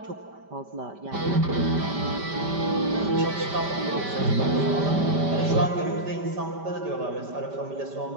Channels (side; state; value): left; late; 5.1 ms